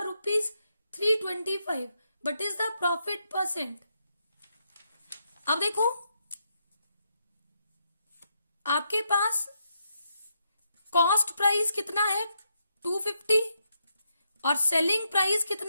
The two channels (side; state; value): both; inverted; correlation -0.80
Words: ₹325. What is the profit %? अब देखो आपके पास कॉस्ट प्राइस कितना है 250 और सेलिंग प्राइस